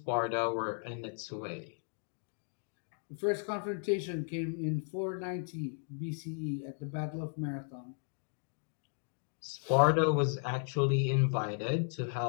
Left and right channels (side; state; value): right; silent; 54 dB below the other